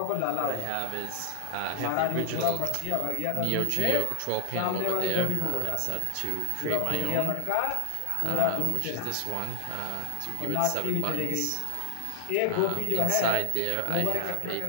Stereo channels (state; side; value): different; both; correlation 0.00